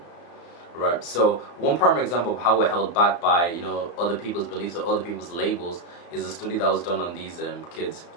right? So one primary example of how we're held back by, you know, other people's beliefs or other people's labels is a study that was done on these kids.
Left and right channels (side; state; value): right; late; 35 ms